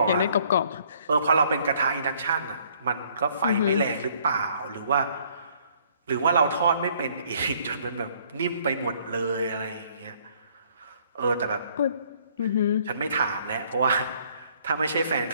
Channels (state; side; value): inverted; both; correlation -0.62